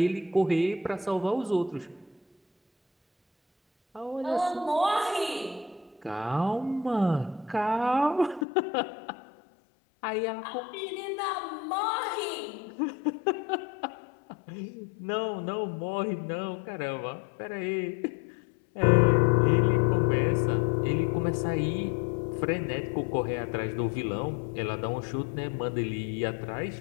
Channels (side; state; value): right; drops out; at 8.5 s